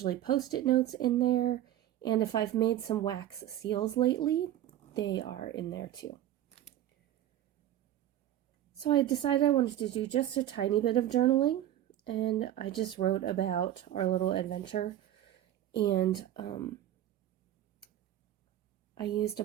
post-it notes in there, and if I've made some wax seals lately, they are in there too. So I decided I wanted to do just a tiny bit of journaling, and I just wrote about our little adventure, and I used a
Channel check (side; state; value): left; quieter; 12.3 dB